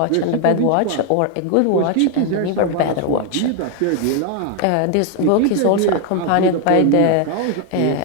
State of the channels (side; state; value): both; different; correlation 0.00